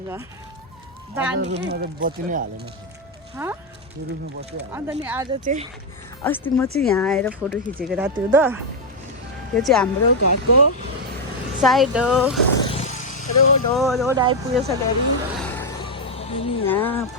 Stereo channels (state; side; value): normal; both; correlation 0.01